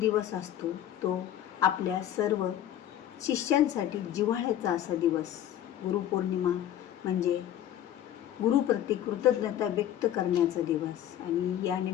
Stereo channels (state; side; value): quieter; right; 11.4 dB